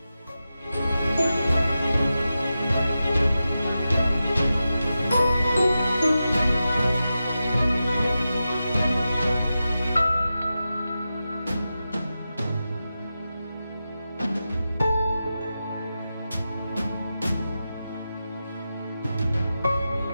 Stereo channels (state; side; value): inverted; both; correlation -0.92